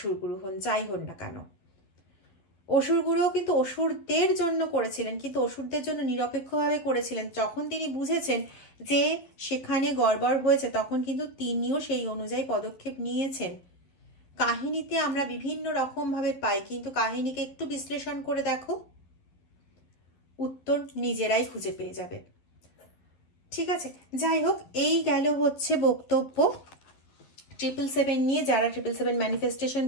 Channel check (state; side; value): late; right; 11 ms